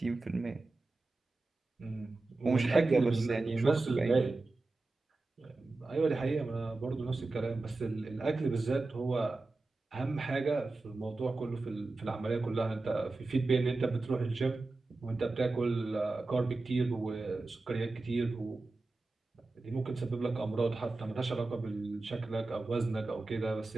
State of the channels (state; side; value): quieter; left; 3.3 dB